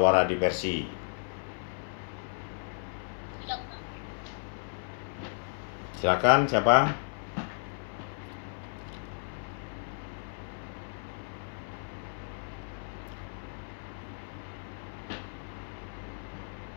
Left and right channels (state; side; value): silent; right; 55 dB below the other